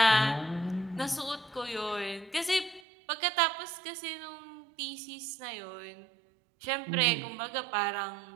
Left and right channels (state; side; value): drops out; left; at 2.8 s